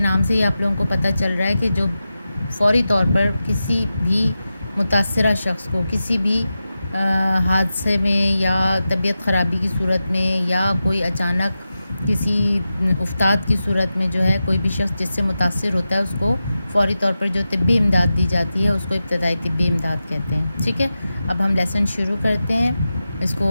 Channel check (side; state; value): both; inverted; correlation -0.92